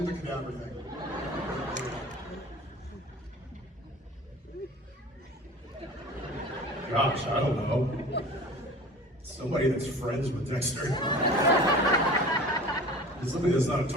the cadaver thing. Gosh, I don't know. Somebody that's friends with Dexter. Somebody that's not a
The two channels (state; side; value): normal; both; correlation 0.40